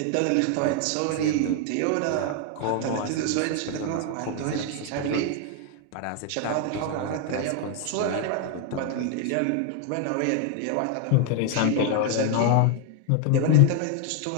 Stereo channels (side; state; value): both; different; correlation 0.00